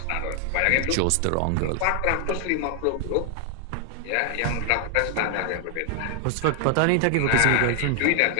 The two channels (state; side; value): different; both; correlation 0.00